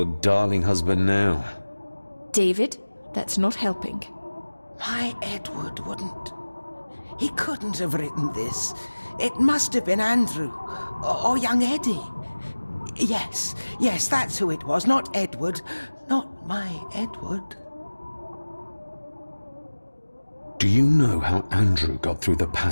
darling husband now? David, that's not helping. My Edward wouldn't. He couldn't have written this. It must have been Andrew. Or young Eddie. Yes, that's who it was. Not Edward. Not my Edward. Do you know how Andrew got through the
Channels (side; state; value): both; inverted; correlation -1.00